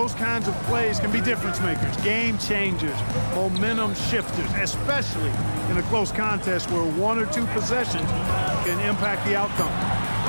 kinds of plays can be difference makers, game changers, momentum shifters, especially in a close contest where 1 or 2 possessions can impact the outcome.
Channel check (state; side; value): inverted; both; correlation -1.00